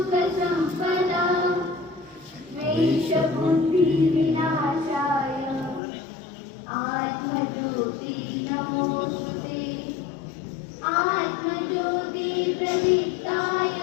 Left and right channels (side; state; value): right; drops out; at 5.8 s